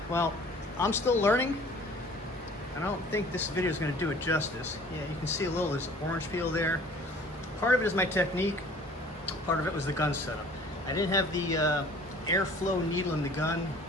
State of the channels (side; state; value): both; normal; correlation 0.50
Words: well, I'm still learning. I don't think this video is gonna do it justice. Yeah, you can see a little, there's orange peel there. Part of it is my technique. Part of it was the gun setup. I didn't have the airflow needle in the gun